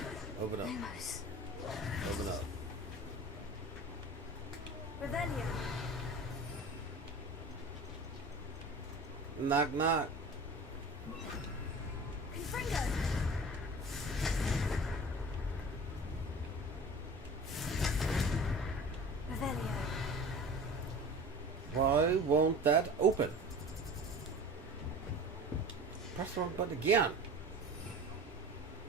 Open up. Open up. Revelio. Knock knock. Confringo! Revelio. Why won't that open? Press the wrong button again.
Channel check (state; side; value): normal; both; correlation 0.39